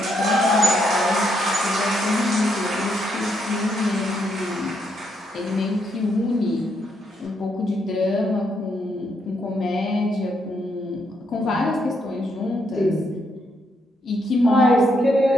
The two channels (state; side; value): normal; both; correlation 0.77